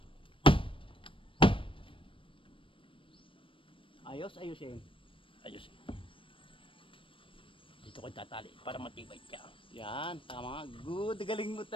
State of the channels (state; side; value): late; right; 0.25 ms